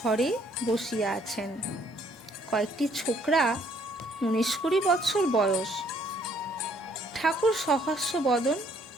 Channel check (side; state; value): both; normal; correlation 0.64